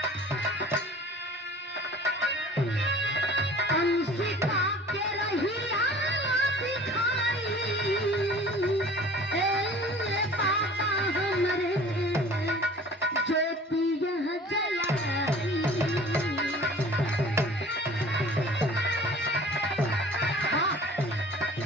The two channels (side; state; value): both; normal; correlation 0.46